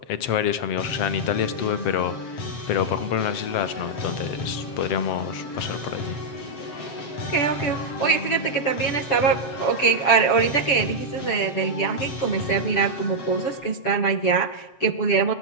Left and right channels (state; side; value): late; right; 7.5 ms